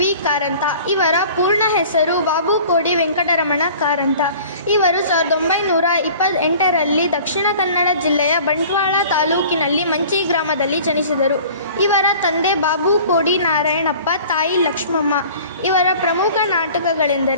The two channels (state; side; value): inverted; both; correlation -0.46